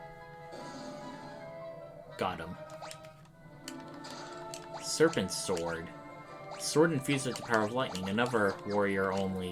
Got him. Serpent Sword. Sword infused with the power of lightning, another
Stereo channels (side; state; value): both; identical; correlation 1.00